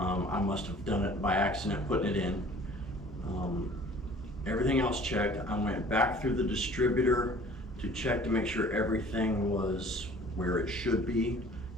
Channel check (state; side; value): normal; both; correlation 0.49